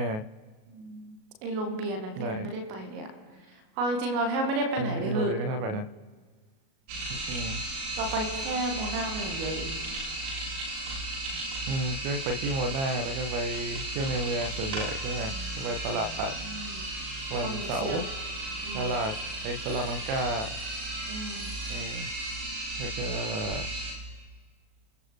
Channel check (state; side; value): late; left; 37 ms